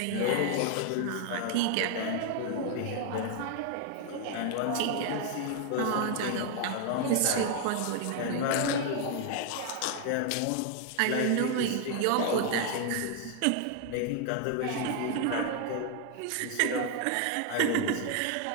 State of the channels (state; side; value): different; both; correlation 0.00